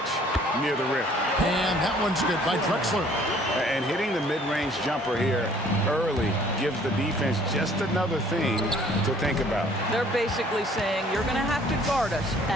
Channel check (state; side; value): normal; both; correlation 0.57